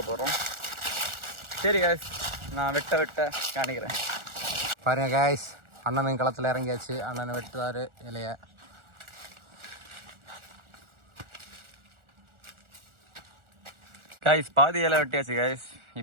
போகிறோம். சரி காய்ஸ், நான் வெட்ட காணிக்கிறேன். பாருங்க காய்ஸ், அண்ணன் களத்தில் இறங்கியாச்சு. அண்ணனை வெட்டுவார் இலைய. காய்ஸ், பாதி இலை வெட்டியாச்சு காய்ஸ்.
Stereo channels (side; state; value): left; late; 1.4 ms